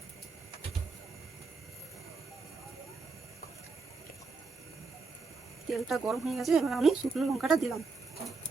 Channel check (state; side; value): quieter; left; 4.2 dB